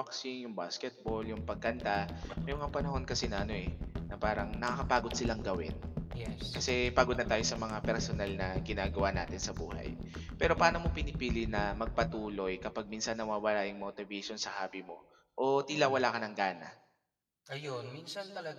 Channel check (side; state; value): both; identical; correlation 1.00